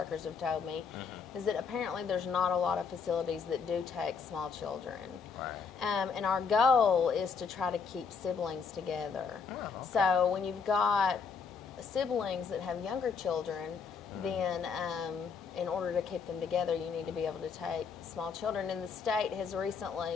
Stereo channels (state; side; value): quieter; right; 5.7 dB